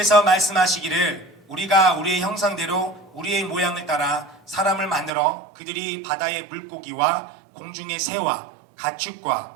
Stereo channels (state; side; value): drops out; left; at 5.1 s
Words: 말씀하시기를 우리가 우리의 형상대로 우리의 모양을 따라 사람을 만들어 그들이 바다의 물고기와 공중의 새와